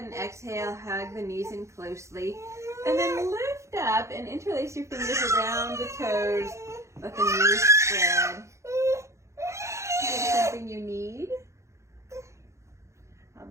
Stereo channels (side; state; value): left; late; 0.14 ms